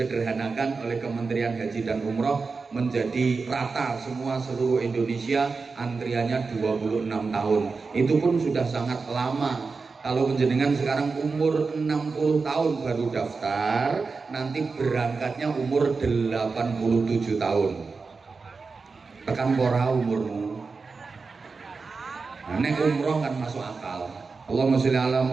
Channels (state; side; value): quieter; left; 4.5 dB